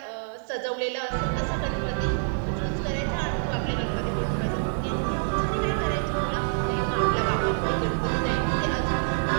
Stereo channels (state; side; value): silent; left; digital silence